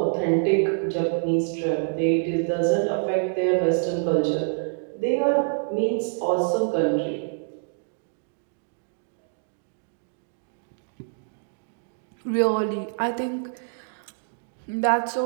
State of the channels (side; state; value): left; silent; digital silence